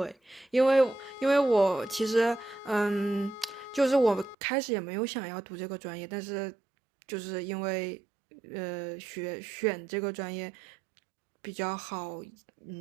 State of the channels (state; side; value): drops out; left; at 4.4 s